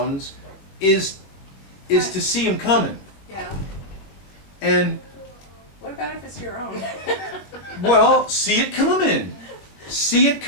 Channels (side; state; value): right; late; 21 ms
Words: is to see them coming. yeah. And, What about if it's your own? well, see it coming. See it